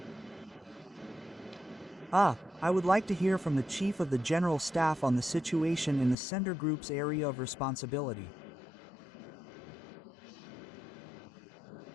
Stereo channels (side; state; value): right; drops out; at 6.2 s